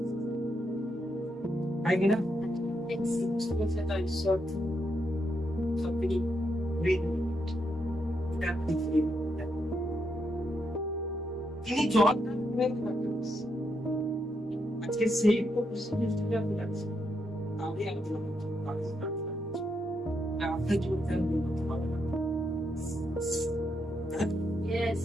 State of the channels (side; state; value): both; normal; correlation 0.80